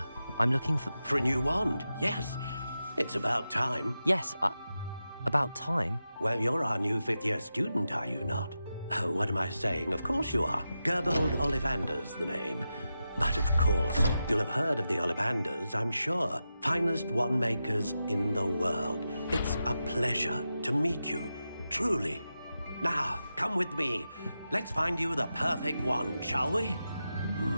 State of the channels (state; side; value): inverted; both; correlation -0.90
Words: I'm looking for... For a new wand, yes. It's about time. Yes, about time? Well, you're our new fifth-year student, are you not? Oh, what am I saying? Of course you are. Gerbold Ollivander's the name. But of course, you'll have heard of the Ollivanders, I'm sure. Finest wand makers in the world. It's a pleasure to meet you, truly. Now, come with me. Let's find you the perfect wand, shall we?